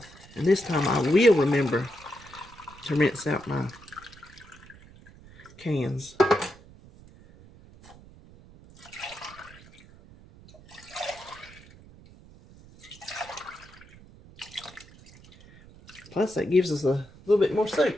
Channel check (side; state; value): right; noise; rumble, 22 dB below the sound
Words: And this time I will remember to rinse out my cans. Plus that gives us a little bit more